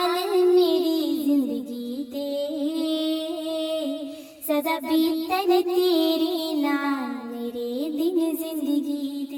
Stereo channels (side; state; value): both; identical; correlation 1.00